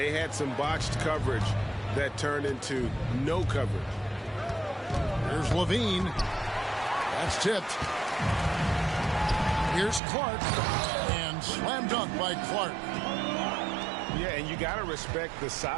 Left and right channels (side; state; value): left; drops out; at 10.0 s